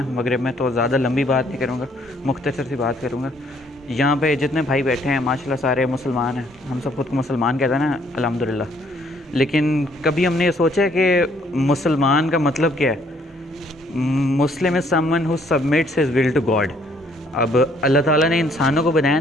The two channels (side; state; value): both; normal; correlation 0.65